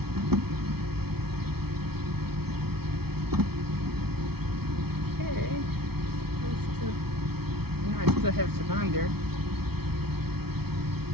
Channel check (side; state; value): left; late; 0.96 ms